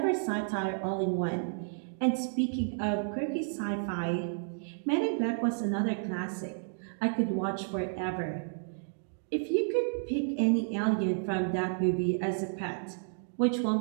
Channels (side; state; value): left; silent; digital silence